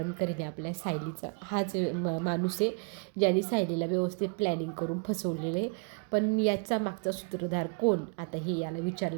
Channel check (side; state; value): left; quieter; 37.3 dB